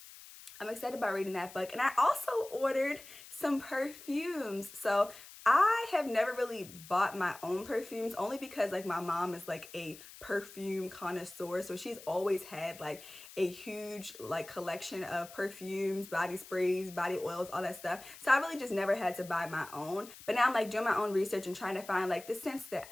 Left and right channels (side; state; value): left; noise; hiss, 17 dB below the sound